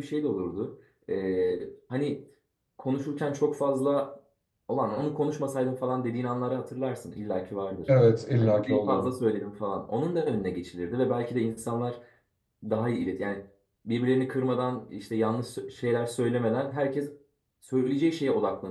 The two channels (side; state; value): both; identical; correlation 1.00